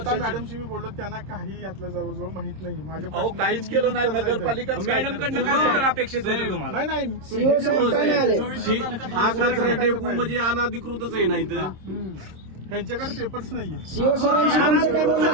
मॅडमशी मी बोललो, त्यांना काही यातलं जवळजवळ माहित नाही. माझ्या अहो काहीच केलं नाही नगरपालिका. मॅडमकडनं काय उत्तर अपेक्षित होतं तुम्हाला? नाही हा कचरा डेपो म्हणजे अनधिकृतच आहे नाही तर ह्यांच्याकडे पेपर्स नाहीये.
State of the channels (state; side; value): late; left; 26 ms